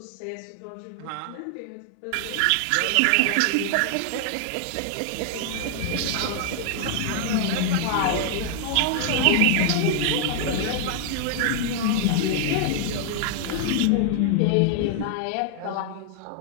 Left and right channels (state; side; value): different; both; correlation 0.00